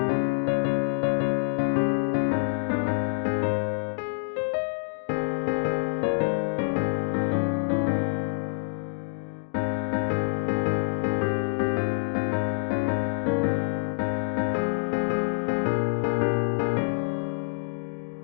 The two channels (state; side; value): silent; right; digital silence